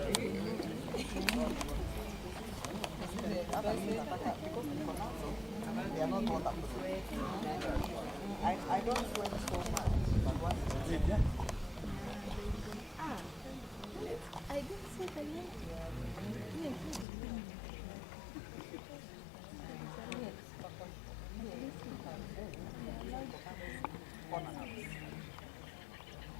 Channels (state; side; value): drops out; right; at 17.1 s